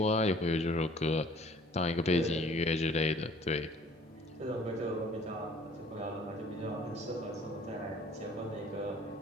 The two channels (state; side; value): normal; both; correlation 0.54